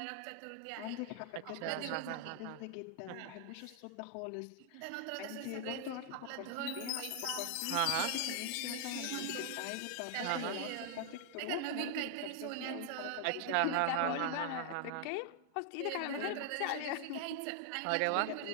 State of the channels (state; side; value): different; both; correlation 0.00